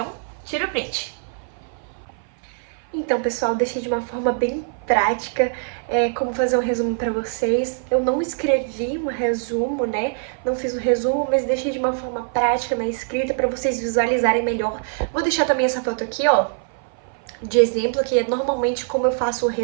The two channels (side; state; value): left; silent; 57 dB below the other